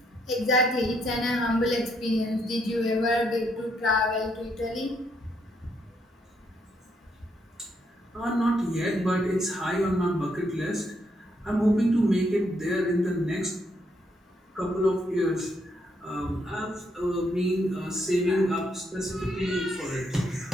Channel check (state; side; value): normal; both; correlation 0.74